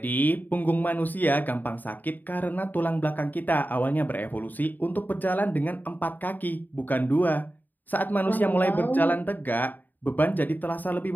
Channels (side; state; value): right; late; 0.087 ms